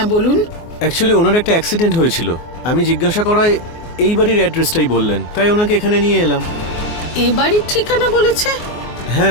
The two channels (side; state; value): right; late; 24 ms